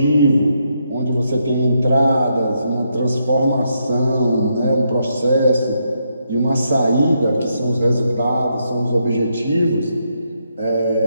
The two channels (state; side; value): inverted; both; correlation -0.79